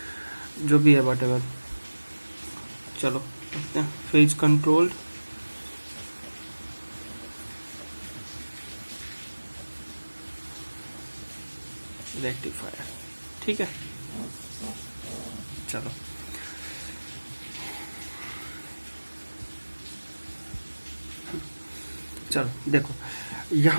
जो भी है वट एवर। चलो देखते हैं, फेज कंट्रोल रेक्टिफायर। ठीक है, चलो। चलो देखो,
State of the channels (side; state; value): both; inverted; correlation -1.00